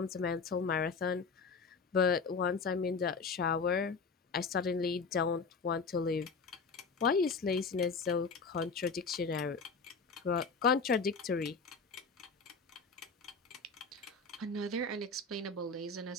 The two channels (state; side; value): quieter; right; 4.6 dB